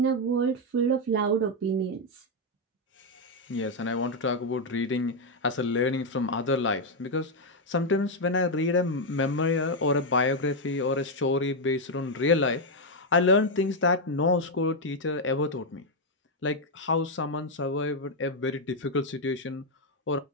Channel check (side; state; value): both; normal; correlation 0.02